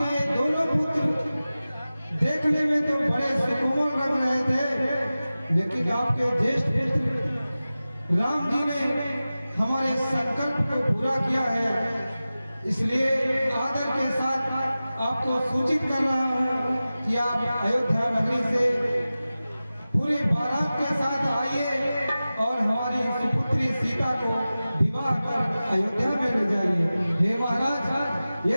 दोनों पुत्र देखने में तो बड़े सुकोमल लग रहे थे, लेकिन आपके ज्येष्ठ पुत्र राम जी ने हमारे संकल्प को पूरा किया है। इसलिए आदर के साथ आपको सूचित कर रहा हूँ कि आप अयोध्या नगरी से पूरी बारात के साथ आइए और हमारी सुपुत्री सीता को विवाह कर अयोध्या में ले जाइए। हे महाराज,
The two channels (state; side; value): inverted; both; correlation -0.96